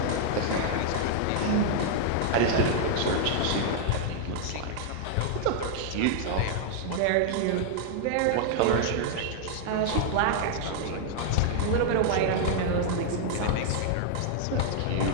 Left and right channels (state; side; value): different; both; correlation -0.01